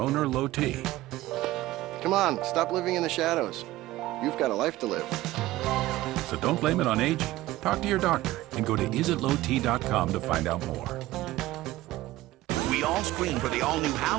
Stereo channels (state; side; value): quieter; left; 16.7 dB